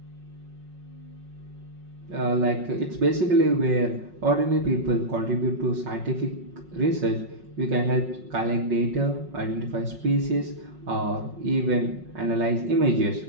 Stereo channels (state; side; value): late; left; 5.4 ms